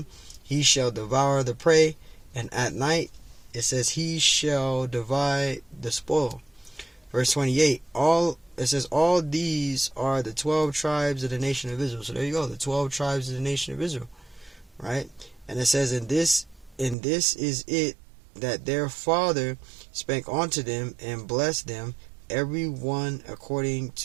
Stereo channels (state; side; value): drops out; left; at 16.9 s